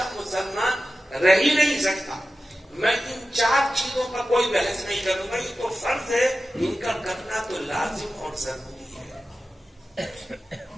مسلمان رہ ہی نہیں سکتا۔ میں ان 4 چیزوں کا کوئی بحث نہیں کروں گا، یہ تو فرض ہے، ان کا کرنا تو لازم اور ضروری ہے۔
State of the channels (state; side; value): normal; both; correlation 0.93